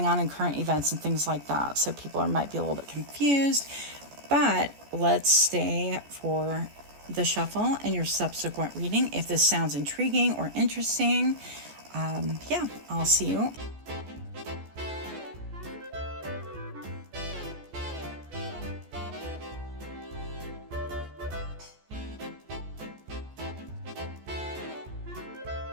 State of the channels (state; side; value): late; left; 14 ms